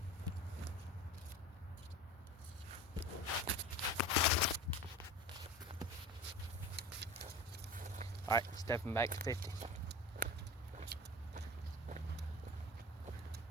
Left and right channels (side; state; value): both; normal; correlation 0.33